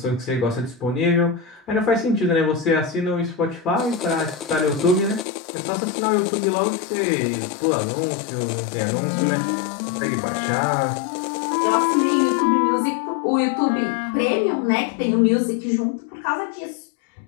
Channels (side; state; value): right; drops out; at 5.2 s